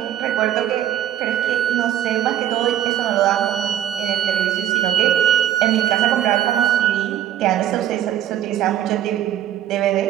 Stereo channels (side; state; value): left; quieter; 11.3 dB